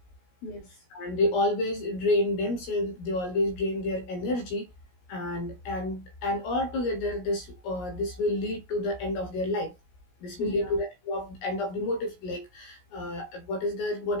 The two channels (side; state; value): right; late; 17 ms